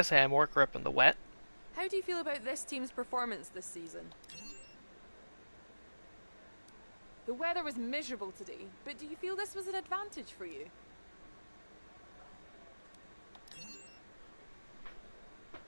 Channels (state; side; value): inverted; both; correlation -1.00